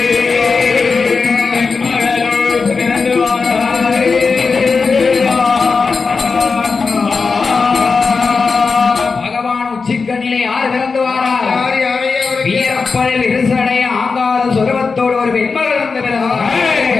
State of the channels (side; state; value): right; quieter; 4.7 dB